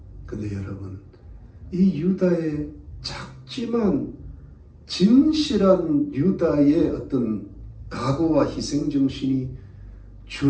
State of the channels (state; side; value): identical; both; correlation 1.00